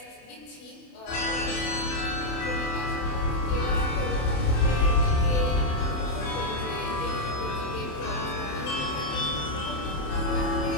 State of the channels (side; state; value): right; late; 27 ms